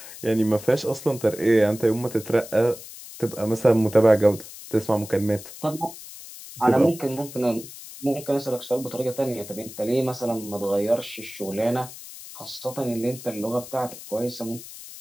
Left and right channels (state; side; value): noise; left; hiss, 14 dB below the sound